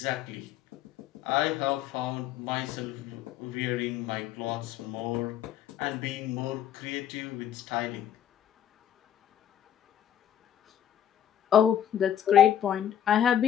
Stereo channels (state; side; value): quieter; right; 10.3 dB